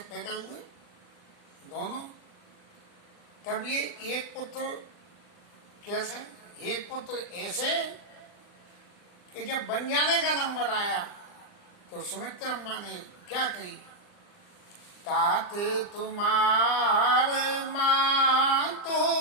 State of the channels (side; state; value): right; late; 40 ms